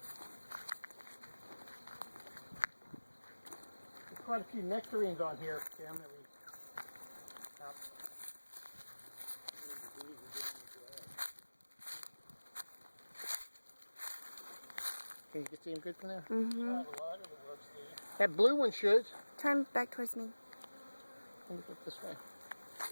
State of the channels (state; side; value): inverted; both; correlation -1.00